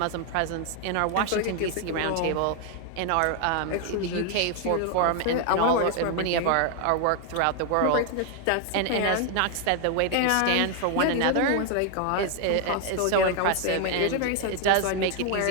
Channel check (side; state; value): both; different; correlation 0.00